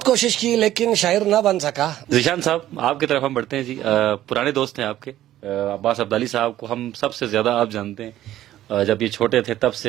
کوشش کی لیکن شاعر نہ بن سکا. ذیشان صاحب آپ کی طرف ہم بڑھتے ہیں جی. پرانے دوست ہیں آپ کے، عباس عبدالی صاحب کو ہم سب سے زیادہ آپ جانتے ہیں. جب یہ چھوٹے تھے تب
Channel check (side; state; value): left; quieter; 13.4 dB